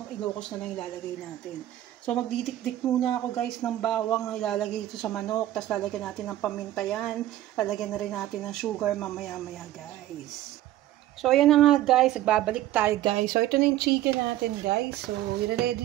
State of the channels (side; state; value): left; quieter; 13.9 dB